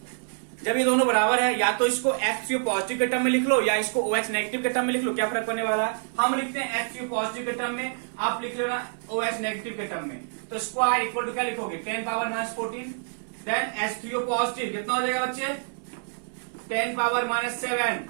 जब ये दोनों बराबर है या तो इसको H3O पॉजिटिव के टर्म में लिख लो या इसको OH नेगेटिव के टर्म में लिख लो, क्या फर्क पड़ने वाला है? हम लिखते हैं H3O पॉजिटिव के टर्म में, आप लिख लो ना OH नेगेटिव के टर्म में। तो स्क्वायर इक्वल टू क्या लिखोगे? 10 power minus 14 then H3O positive कितना हो जाएगा बच्चे? 10 पावर माइनस 7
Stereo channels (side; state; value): left; silent; 60 dB below the other